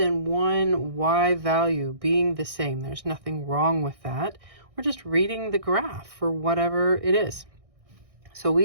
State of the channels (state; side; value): late; left; 1.6 ms